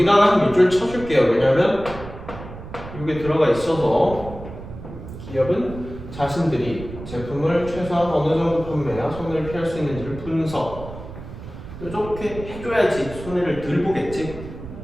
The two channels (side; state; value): right; noise; rumble, 12 dB below the sound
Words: 한 밑줄 쳐줄게요. 왜냐면 이게 들어가 있어서 기업은 자신들이 제품을 최소한 어느 정도 판매해야 손해를 피할 수 있는지를 분석. 이렇게 해줘야지 손해를 덜 보겠지.